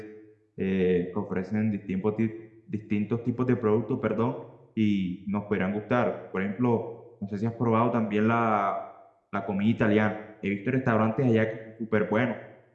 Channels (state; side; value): identical; both; correlation 1.00